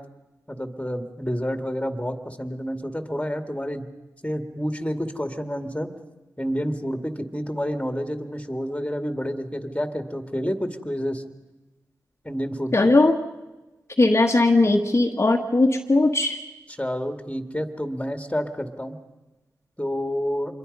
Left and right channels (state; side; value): normal; both; correlation 0.90